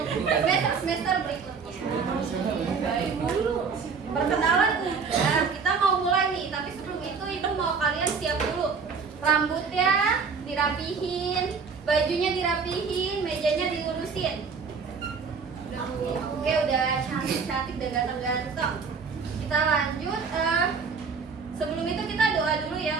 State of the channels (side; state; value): left; quieter; 5.4 dB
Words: semester berikutnya. Baik, perkenalan udah. Kita mau mulai nih, tapi sebelum itu ibu mau kalian siap dulu. Rambutnya dirapihin, bajunya dirapihin, mejanya dilurusin. Oke, udah cantik-cantik dan ganteng-ganteng. Kita lanjut. Sebelum itu kita doa dulu